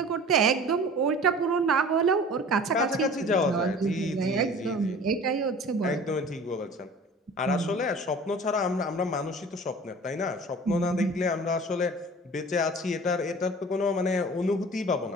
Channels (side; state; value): both; normal; correlation 0.43